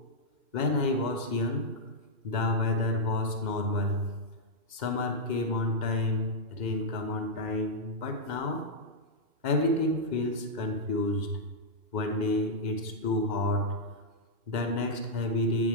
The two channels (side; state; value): left; late; 2.1 ms